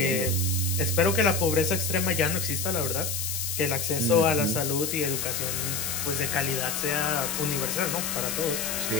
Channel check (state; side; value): noise; left; hiss, 2 dB below the sound